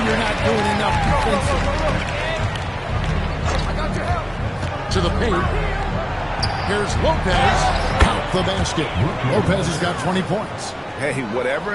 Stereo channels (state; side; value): identical; both; correlation 1.00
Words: you're not doing enough defensively. To the paint. Here's Lopez. Count the basket. Lopez has got 20 points. Hey, whatever